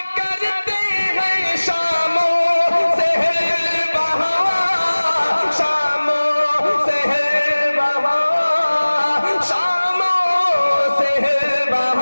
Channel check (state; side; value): inverted; both; correlation -1.00